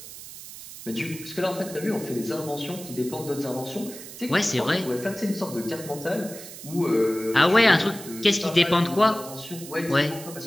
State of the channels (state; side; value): noise; right; hiss, 14 dB below the sound